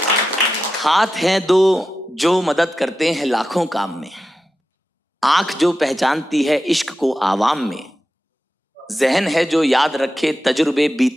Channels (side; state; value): both; normal; correlation 0.91